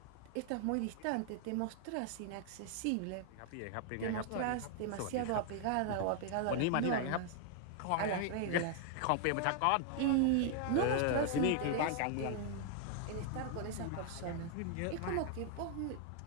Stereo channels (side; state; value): both; different; correlation 0.00